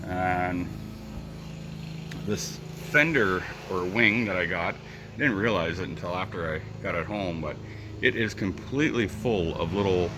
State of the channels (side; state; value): both; identical; correlation 1.00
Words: And this fender or wing that I got, I didn't realize it until after I got it home, but it is completely full of little